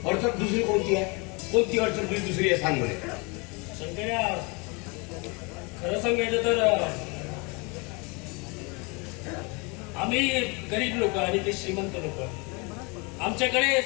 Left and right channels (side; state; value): right; quieter; 29.9 dB